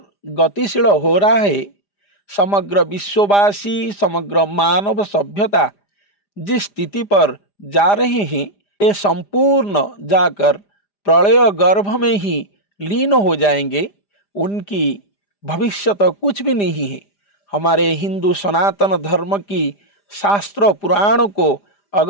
गतिशील हो रहा है, समग्र विश्ववासी, समग्र मानव सभ्यता जिस स्थिति पर जा रहे हैं, ये संपूर्ण जाकर प्रलय गर्भ में ही लीन हो जाएंगे। उनकी भविष्य तो कुछ भी नहीं है। हमारे हिंदू सनातन धर्म की शास्त्र पुराणों को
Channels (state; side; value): late; right; 4.9 ms